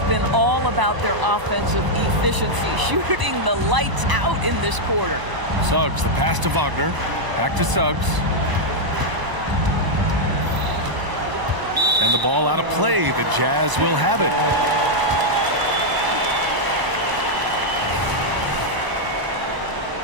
been all about their offensive efficiency, shooting the lights out in this quarter. Suggs, the pass to Wagner. Back to Suggs. And the ball out of play. The Jazz will have it.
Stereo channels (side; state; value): left; late; 1.0 ms